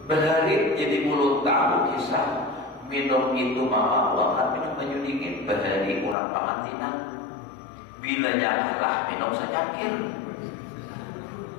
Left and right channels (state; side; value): drops out; right; at 6.2 s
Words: Berhari jadi mulut tahu kisah minum itu mama buahkan minum baju dingin berhari kurang pamantinan. Bilanya kalah minum secangkir.